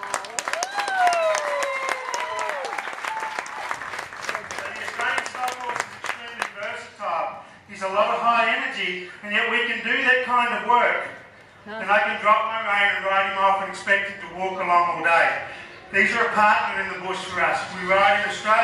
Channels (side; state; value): both; identical; correlation 1.00